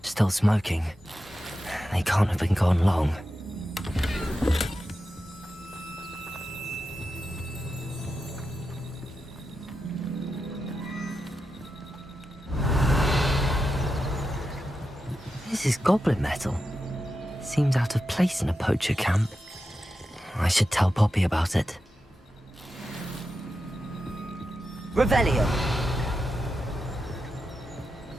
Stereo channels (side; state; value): both; normal; correlation 0.89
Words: Still smoking. They can't have been gone long. This is goblin metal. Seems out of place in a poacher camp. I should tell Poppy about it. Revelio.